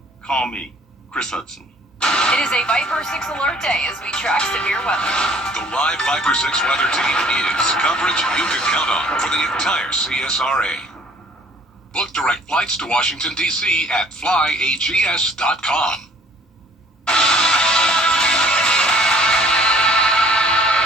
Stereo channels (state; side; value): normal; both; correlation 0.56